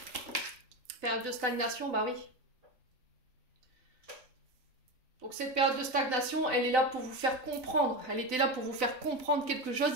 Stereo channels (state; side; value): late; left; 3.9 ms